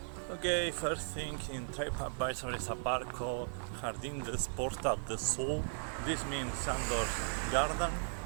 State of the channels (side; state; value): left; silent; digital silence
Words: Okay, first thing in TripAdvisor is a bar called Jardín de Porta del Sol. This means Sandor's garden.